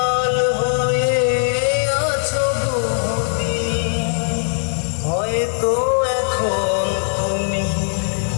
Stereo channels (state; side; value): silent; right; digital silence